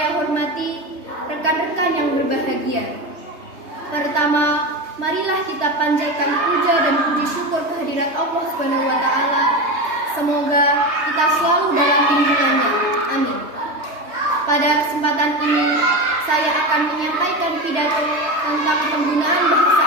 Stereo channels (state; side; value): late; left; 3.3 ms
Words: hormati, rekan-rekan yang berbahagia. Pertama, marilah kita panjatkan puja dan puji syukur kehadirat Allah Subhanahu wa taala. Semoga kita selalu dalam lindungannya. Amin. Pada kesempatan ini, saya akan menyampaikan pidato tentang penggunaan bahasa